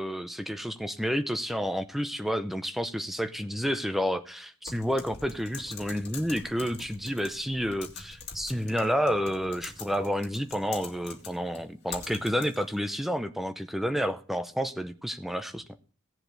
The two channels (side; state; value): both; normal; correlation 0.90